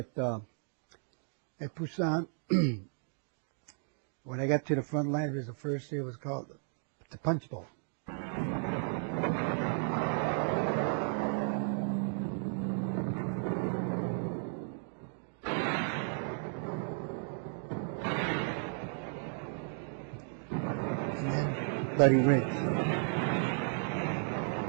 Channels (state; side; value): silent; left; 55 dB below the other